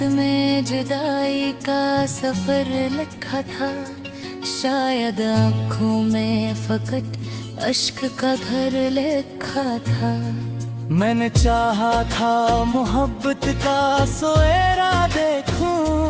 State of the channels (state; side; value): identical; both; correlation 1.00